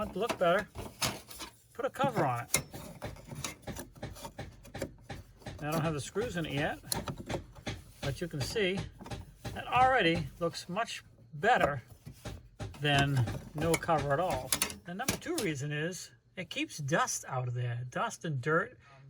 it to look better, put a cover on it. I don't have the screws in it yet, but you can see that already looks much better than no cover at all. The number 2 reason is it keeps dust out of there. Dust and dirt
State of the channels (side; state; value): both; identical; correlation 1.00